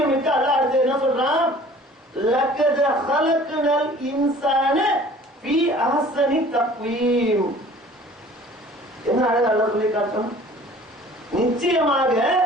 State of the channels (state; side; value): normal; both; correlation 0.49